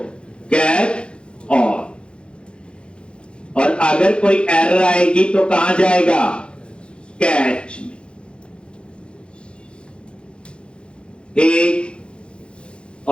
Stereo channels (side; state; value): right; late; 0.056 ms